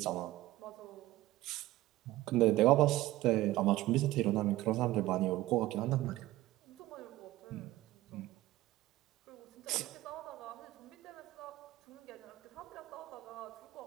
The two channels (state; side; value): quieter; left; 16.6 dB